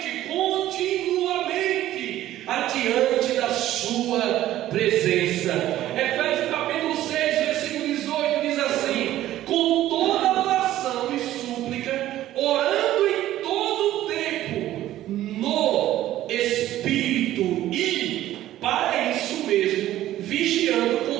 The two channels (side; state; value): left; quieter; 13.8 dB